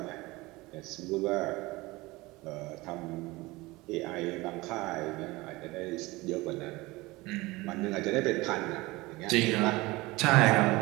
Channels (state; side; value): quieter; left; 21.5 dB